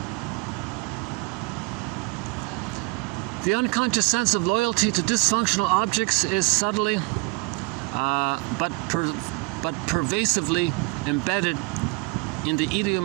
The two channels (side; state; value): left; quieter; 26.8 dB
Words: The unconscious sense of loyalty to dysfunctional objects is subtly but pervasively embedded in the